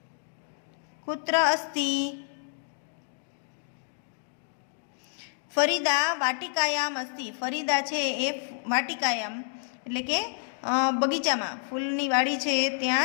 કુત્ર અસ્તિ? ફરીદા વાટિકાયામ અસ્તિ. ફરીદા છે એ વાટિકાયામ એટલે કે બગીચામાં, ફૂલની વાડી છે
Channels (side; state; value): right; silent; digital silence